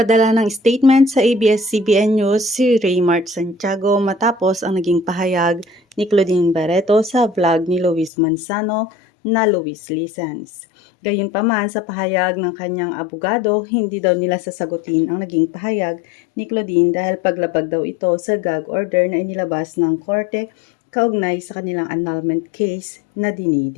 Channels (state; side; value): drops out; right; at 8.1 s